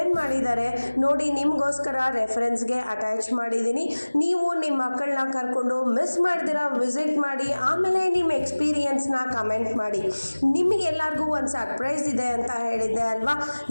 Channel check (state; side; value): inverted; both; correlation -1.00